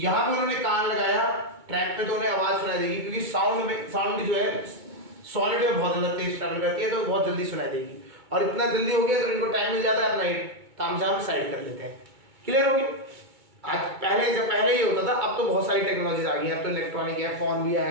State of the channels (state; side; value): late; left; 2.2 ms